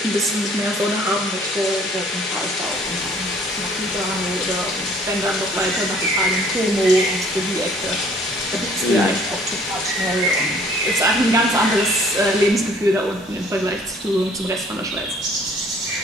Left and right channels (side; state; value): both; normal; correlation 0.57